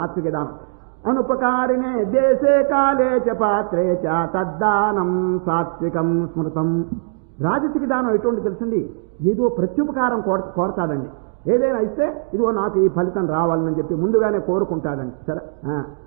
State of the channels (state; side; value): silent; left; digital silence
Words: దానం. అనుపకారినే దేశే కాలే చ పాత్రే చ తద్దానం సాత్వికం స్మృతం. రాజసిక దానం ఎటువంటి తెలుసండి? ఏదో ప్రత్యుపకారం కోరతాడండి. ఏదైనా ఇస్తే ఇదిగో నాకు ఈ ఫలితం రావాలని చెప్పి ముందుగానే కోరుకుంటాడండి. సరే,